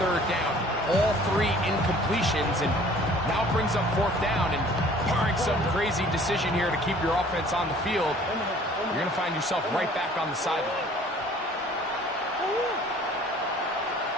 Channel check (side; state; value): both; normal; correlation 0.52